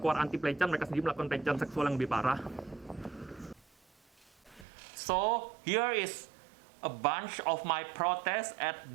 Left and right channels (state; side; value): drops out; left; at 4.7 s